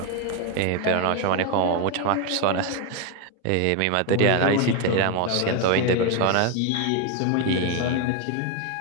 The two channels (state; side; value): different; both; correlation 0.02